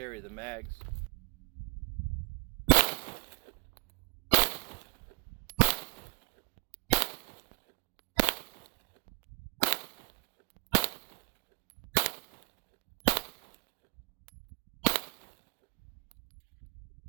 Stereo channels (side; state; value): left; quieter; 33.0 dB